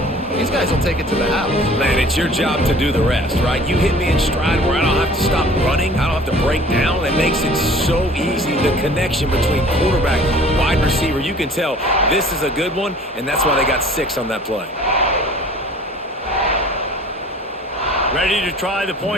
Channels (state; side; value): normal; both; correlation 0.48